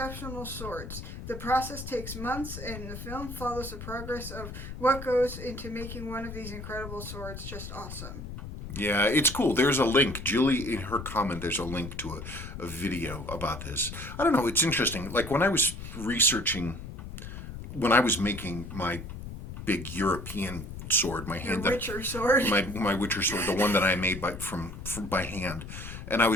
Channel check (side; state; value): left; noise; rumble, 10 dB below the sound